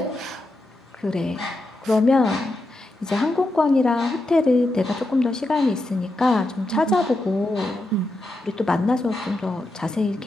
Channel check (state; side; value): normal; both; correlation 0.87